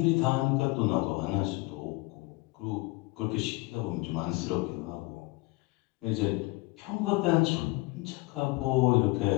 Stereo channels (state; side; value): quieter; right; 23.8 dB